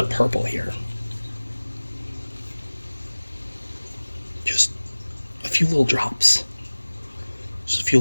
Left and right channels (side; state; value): both; inverted; correlation -1.00